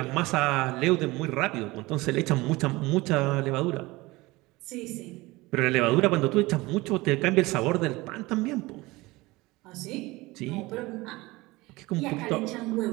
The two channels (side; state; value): left; quieter; 21.2 dB